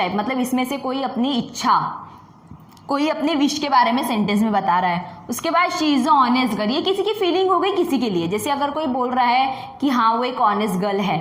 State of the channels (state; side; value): identical; both; correlation 1.00